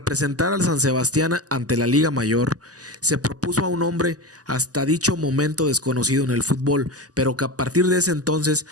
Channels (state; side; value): late; left; 0.67 ms